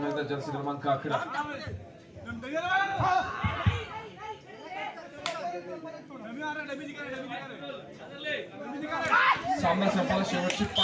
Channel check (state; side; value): identical; both; correlation 1.00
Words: एकदा जर्सी क्रमांक 11. सामना संपायला शेवटची